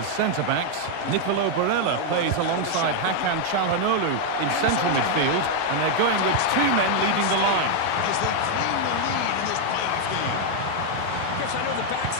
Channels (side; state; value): both; different; correlation 0.00